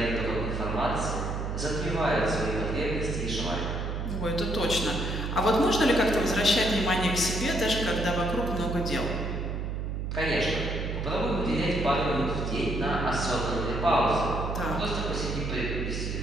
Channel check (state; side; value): noise; right; hum, 3 dB below the sound